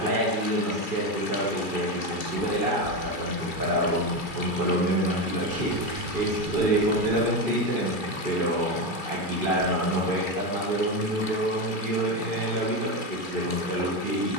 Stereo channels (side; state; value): right; late; 2.4 ms